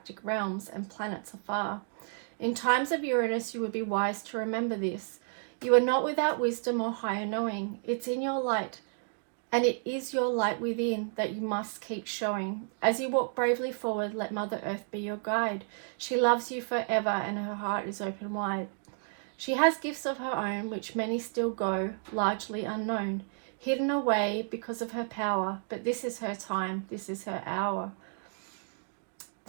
realms and planets afar. In times of Uranus, you would be wise to remember this. You are not without wisdom or higher knowing. It's in your light, and it is your light within that you must keep showing. As you walk bravely forward, let Mother Earth be your guide. She loves you forever, and her heart is open wide. She has gifts of her own, which many still go, largely unknown, hidden away because of her power, but this is her time, this is her hour.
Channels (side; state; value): left; silent; 57 dB below the other